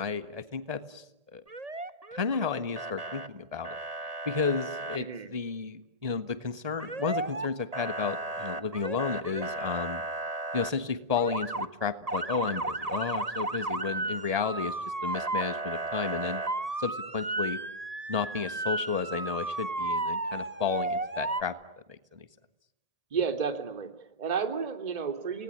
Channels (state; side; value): late; left; 1.8 ms